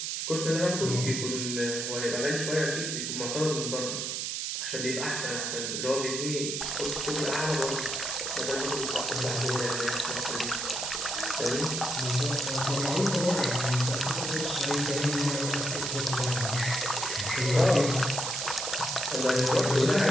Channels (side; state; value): right; noise; hiss, 2 dB below the sound